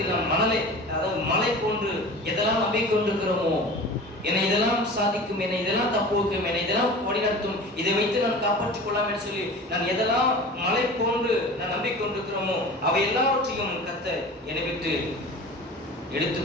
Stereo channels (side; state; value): both; normal; correlation 0.37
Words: நாம் மலை போன்று எதெல்லாம் நம்பிக்கை கொண்டிருக்கிறோமோ, என்னை இதெல்லாம் சாதிக்கும், என்னை இதெல்லாம் தப்பு வைக்கும், என்னை இதெல்லாம் வழிநடத்தும், இதை வைத்து நான் காப்பாற்றிக் கொள்ளலாம் என்று சொல்லி நான் எதெல்லாம் மலை போன்று நான் நம்பிக்கை கொண்டிருக்கிறோமோ அவை எல்லாவற்றையும் கர்த்தர் என்னை விட்டு எடுத்து